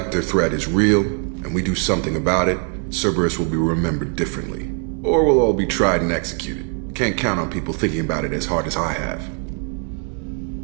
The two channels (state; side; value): quieter; left; 39.4 dB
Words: threat is real, and we do something about it, Cerberus will be remembered differently. Or we'll all be tried and executed. Can't count on people thinking about it as hard as I have.